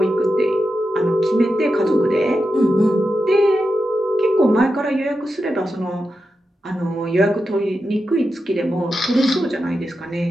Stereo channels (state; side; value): normal; both; correlation 0.89